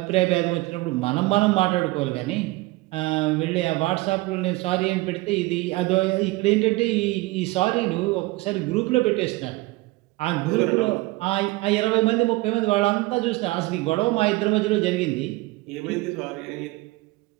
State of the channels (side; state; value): left; quieter; 21.5 dB